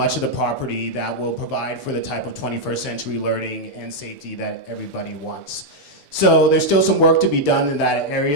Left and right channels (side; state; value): right; late; 6.9 ms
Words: of the property that will provide for the type of 21st century learning and safety that everybody wants. So there's still some work to be done in that